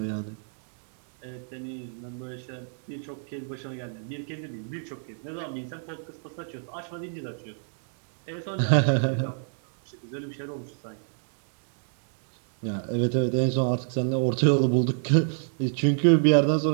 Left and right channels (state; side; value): silent; left; digital silence